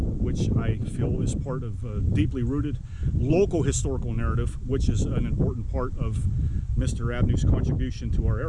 I feel is part of a deeply rooted local historical narrative, which is an important part of Mr. Abner's contribution to our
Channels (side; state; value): both; identical; correlation 1.00